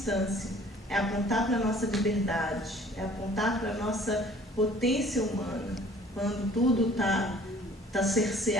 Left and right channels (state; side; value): normal; both; correlation 0.53